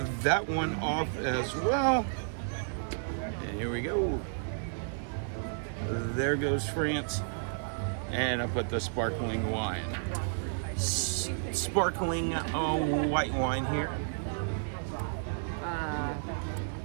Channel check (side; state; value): left; silent; digital silence